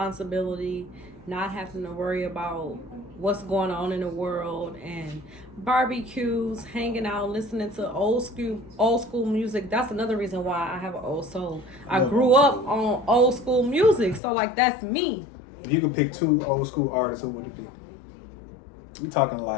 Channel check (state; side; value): drops out; right; at 14.2 s